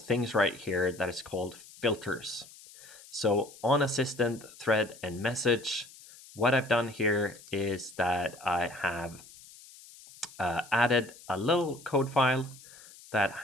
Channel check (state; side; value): noise; left; hiss, 20 dB below the sound